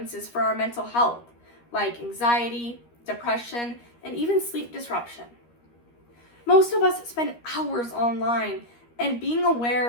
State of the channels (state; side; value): late; right; 13 ms